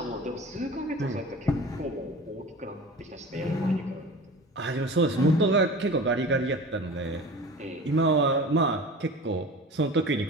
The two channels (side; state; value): both; normal; correlation 0.37